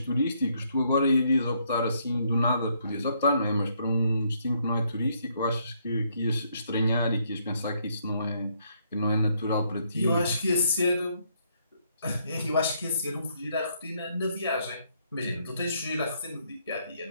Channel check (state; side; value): inverted; both; correlation -0.72